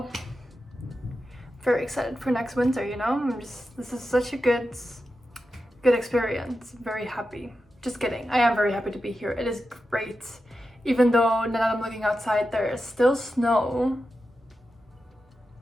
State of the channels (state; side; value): normal; both; correlation 0.90